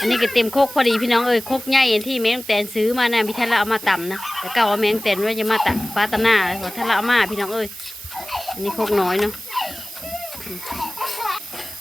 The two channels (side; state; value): right; noise; hiss, 14 dB below the sound